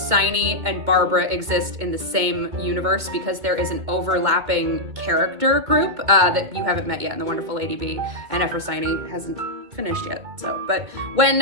and Barbara exist in the same universe because there is an overlapping character group that you haven't met yet in The Wonderful Lady Bee, and Ephrosyne hasn't finished yet. So, but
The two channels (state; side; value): late; left; 2.2 ms